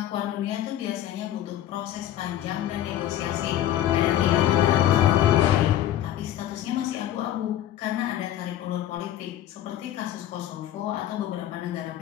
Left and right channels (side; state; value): right; quieter; 12.2 dB